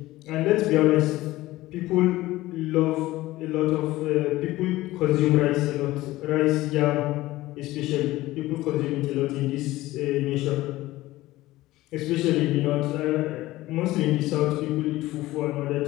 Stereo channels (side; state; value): right; quieter; 17.4 dB